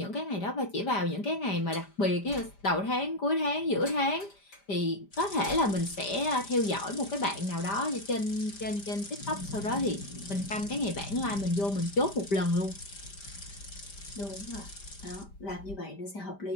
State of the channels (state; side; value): late; right; 5.0 ms